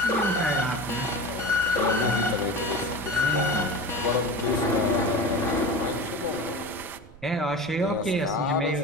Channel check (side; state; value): right; noise; rumble, 22 dB below the sound